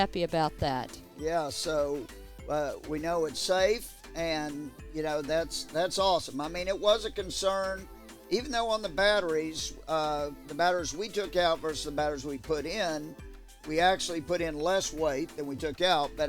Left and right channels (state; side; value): identical; both; correlation 1.00